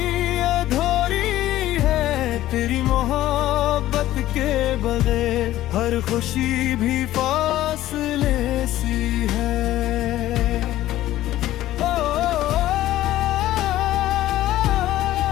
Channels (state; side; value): quieter; right; 14.5 dB